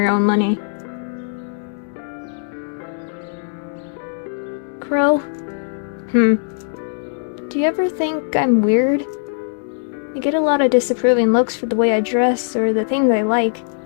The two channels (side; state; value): right; silent; digital silence